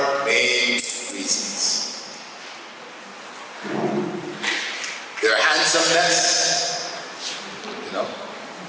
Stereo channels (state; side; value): identical; both; correlation 1.00